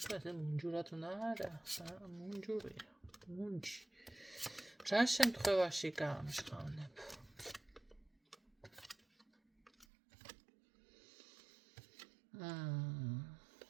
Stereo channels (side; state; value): left; drops out; at 9.9 s